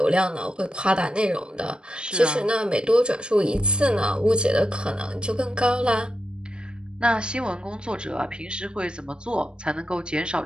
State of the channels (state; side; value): late; left; 0.053 ms